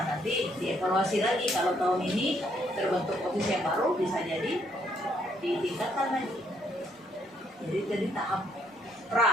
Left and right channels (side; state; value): both; normal; correlation 0.70